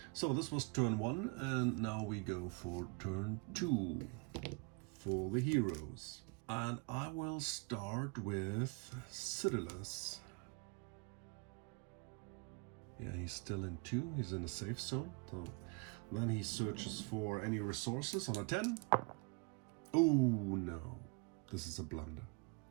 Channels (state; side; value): quieter; left; 31.1 dB